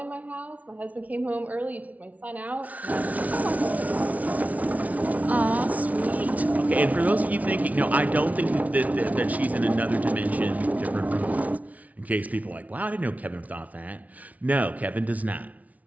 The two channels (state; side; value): late; left; 0.070 ms